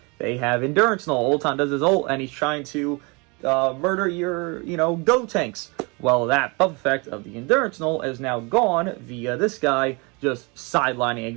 they have endurance null. Ultan does his ult and he's trying to murder your, Go tanks. Well, that buff effect of the endurance null is now gone via this guy just sidelining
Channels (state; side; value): quieter; left; 29.3 dB